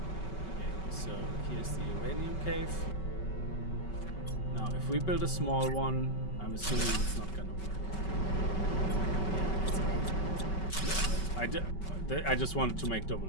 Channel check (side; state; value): right; late; 5.3 ms